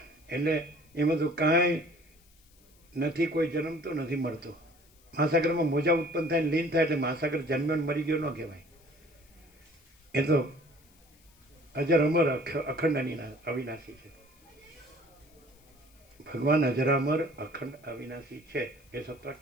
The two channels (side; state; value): left; noise; hiss, 30 dB below the sound